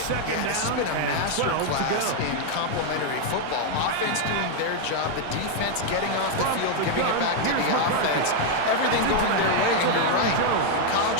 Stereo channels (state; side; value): different; both; correlation 0.00